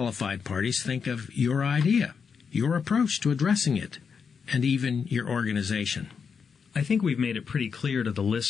parties think of your idea, your approach to addressing it, and even your organization? I think we've made it pretty clear to the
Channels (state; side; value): quieter; right; 6.1 dB